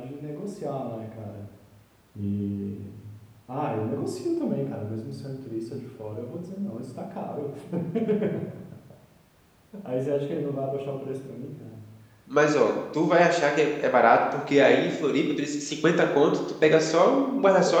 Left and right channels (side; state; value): both; identical; correlation 1.00